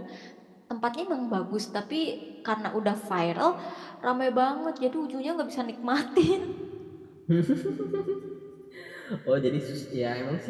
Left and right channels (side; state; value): both; identical; correlation 1.00